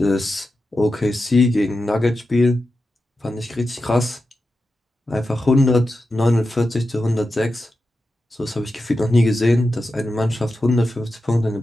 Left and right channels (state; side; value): normal; both; correlation 0.91